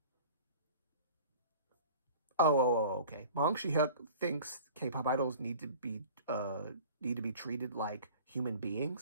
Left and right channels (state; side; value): inverted; both; correlation -0.43